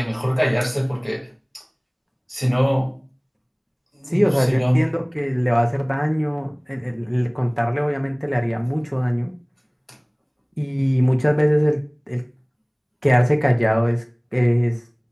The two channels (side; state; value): both; identical; correlation 1.00